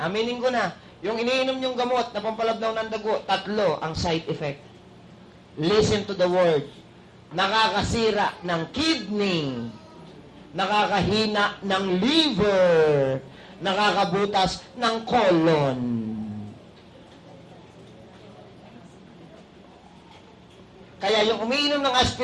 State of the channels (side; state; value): both; identical; correlation 1.00